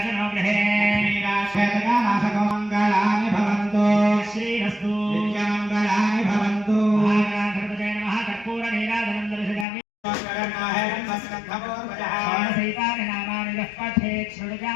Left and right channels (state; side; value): drops out; right; at 9.7 s